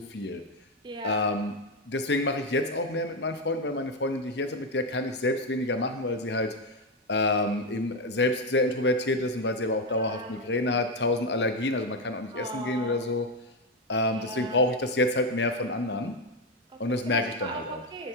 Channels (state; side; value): normal; both; correlation 0.09